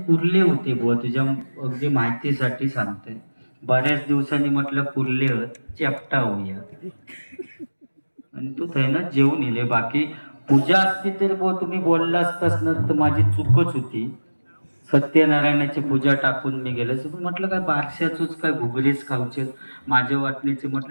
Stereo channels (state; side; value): inverted; both; correlation -1.00